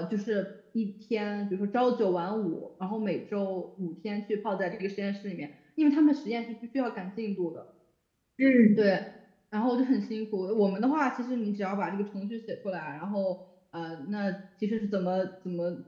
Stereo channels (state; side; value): identical; both; correlation 1.00